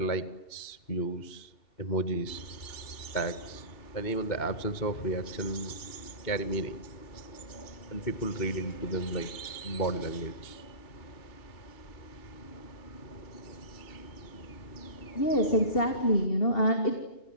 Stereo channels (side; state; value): right; late; 2.7 ms